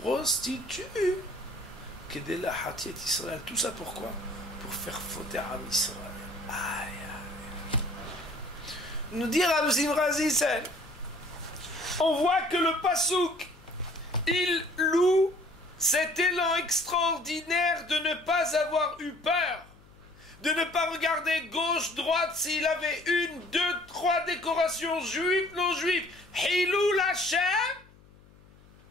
que de la Hatiet Israël. Tout ça pourquoi? Pour faire fauter à Israël. Aïe, aïe. Nous dire à Razisen, on voit que le Passouk, il loue cet élan extraordinaire de ne pas avoir eu peur, de ne pas regarder gauche, droite, s'il avait une, deux, trois décorations juives, non juives. Hilul Hashem,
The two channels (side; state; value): left; noise; hum, 26 dB below the sound